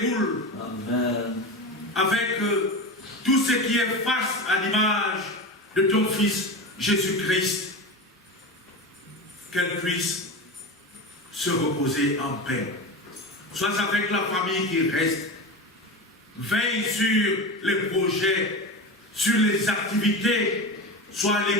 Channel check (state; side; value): normal; both; correlation 0.25